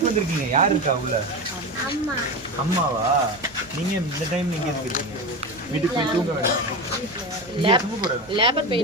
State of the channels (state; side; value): noise; right; hum, 25 dB below the sound